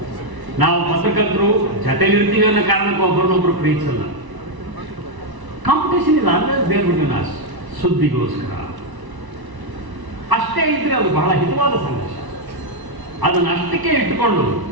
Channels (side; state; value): left; late; 1.0 ms